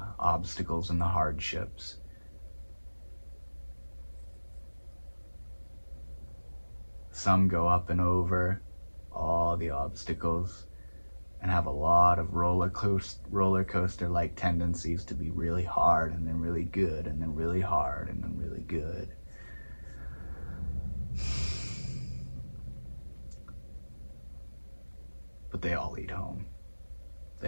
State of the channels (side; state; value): both; inverted; correlation -1.00